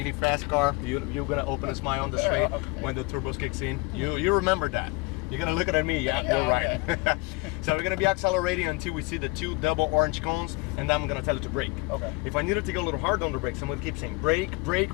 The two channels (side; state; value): right; quieter; 25.2 dB